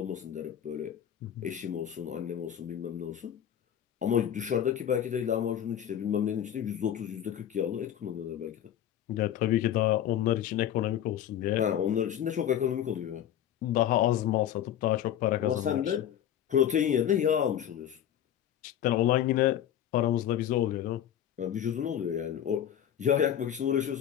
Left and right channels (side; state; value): right; quieter; 10.5 dB